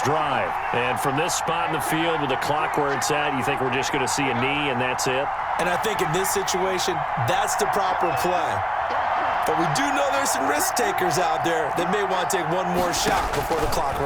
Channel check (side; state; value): both; identical; correlation 1.00